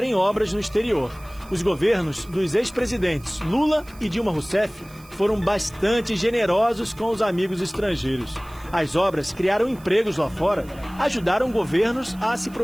obras no exterior. Os governos dos ex-presidentes Lula e Dilma Rousseff foram bastante generosos com os amigos estrangeiros. As obras criaram empregos lá fora, ajudaram governos a se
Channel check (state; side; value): noise; right; hiss, 24 dB below the sound